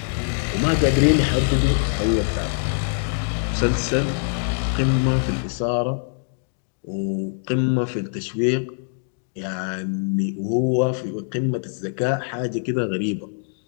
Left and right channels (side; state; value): right; silent; digital silence